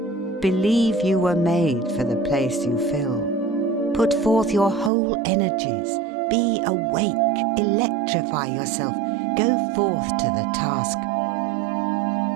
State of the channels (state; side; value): drops out; left; at 4.9 s